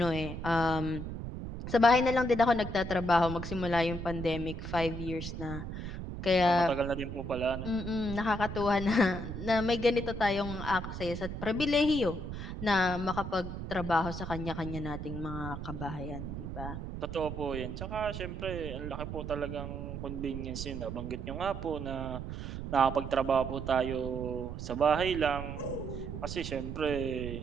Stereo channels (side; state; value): right; noise; rumble, 7 dB below the sound